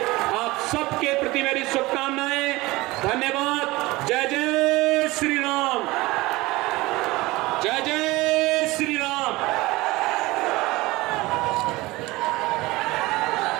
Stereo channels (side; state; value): left; quieter; 20.6 dB